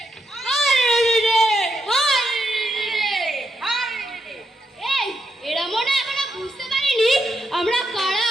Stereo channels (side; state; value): both; normal; correlation 0.80